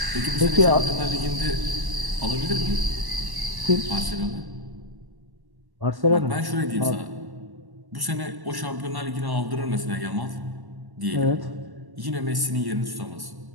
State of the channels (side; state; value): left; late; 1.1 ms